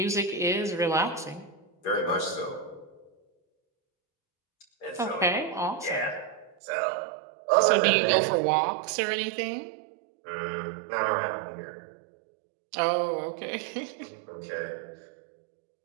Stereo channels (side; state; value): left; drops out; at 6.6 s